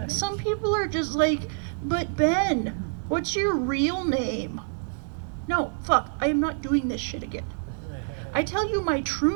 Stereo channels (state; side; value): silent; left; digital silence